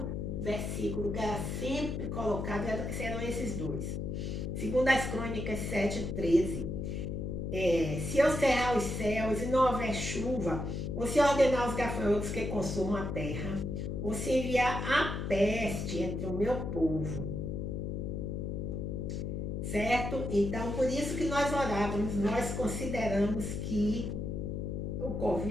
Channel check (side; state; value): left; noise; hum, 3 dB below the sound